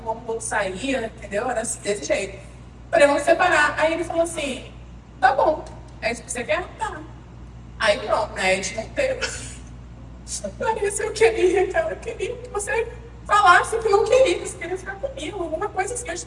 o outro saía, entendeu? Era desse jeito. Falei, vamos separar. Aí ele falou assim, tá bom. É isso que você quer? Tá. Aí pronto, né? A gente não teve. Larissa, eu queria, cara. Eu queria que você falasse que não queria, que você queria ficar comigo. Alguma coisa assim, eu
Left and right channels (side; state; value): both; identical; correlation 1.00